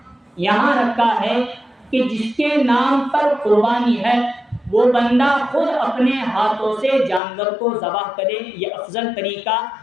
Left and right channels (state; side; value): drops out; right; at 7.2 s